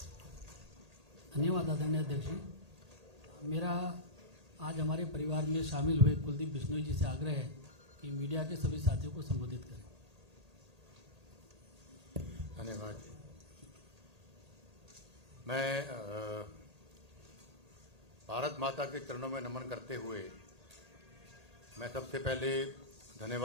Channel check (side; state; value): left; late; 1.8 ms